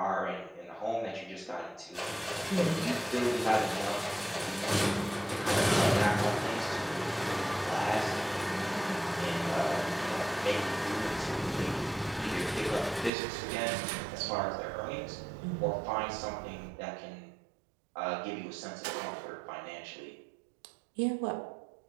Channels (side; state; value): left; drops out; at 13.1 s